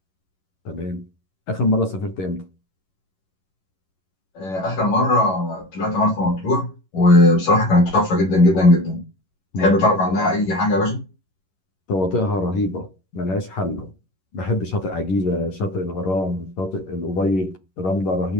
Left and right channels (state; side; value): late; right; 11 ms